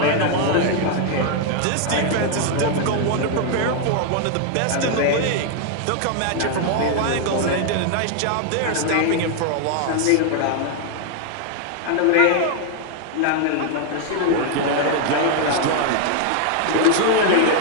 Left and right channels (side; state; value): both; different; correlation 0.00